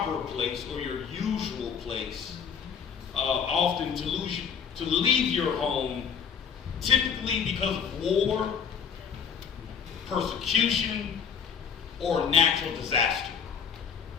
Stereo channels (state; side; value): quieter; right; 7.0 dB